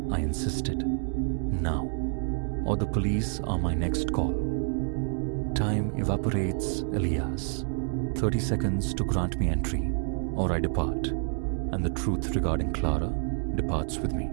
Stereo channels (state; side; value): silent; left; 59 dB below the other